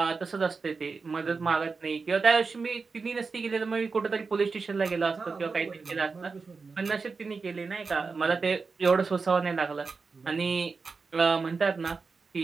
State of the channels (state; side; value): quieter; left; 4.6 dB